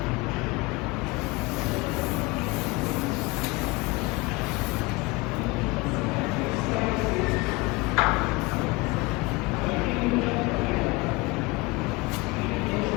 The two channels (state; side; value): quieter; right; 24.0 dB